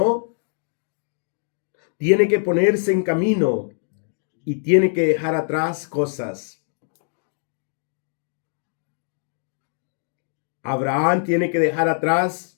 tiene que ponerse en camino y tiene que dejar atrás cosas. Abraham tiene que dejar atrás,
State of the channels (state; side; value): silent; right; digital silence